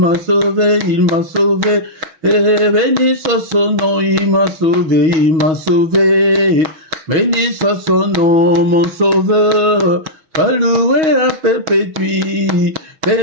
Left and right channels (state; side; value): late; left; 6.3 ms